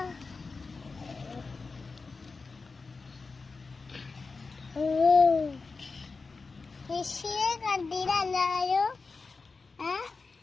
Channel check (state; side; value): quieter; right; 4.2 dB